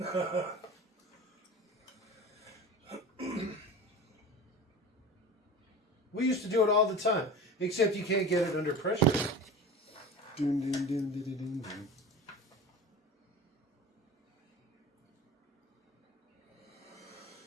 We used to do it all the time, except you can't get it under pressure. Dun, dun, dun, dun, dun, dun, dun.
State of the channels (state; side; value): normal; both; correlation 0.34